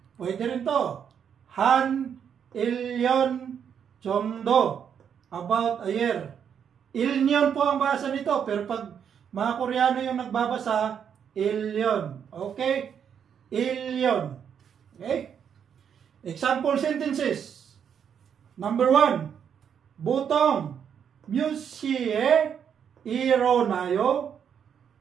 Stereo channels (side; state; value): left; quieter; 7.9 dB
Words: Pwede rin to. Han, ilyon, chomdo, about a year. Ilyon po ang basa nito, pero pag mga Koreano yung nagbabasa, ilyon. Okay? Ilyon. Okay? Example sentences. Number 1, butong, 뮤시에 일어나요?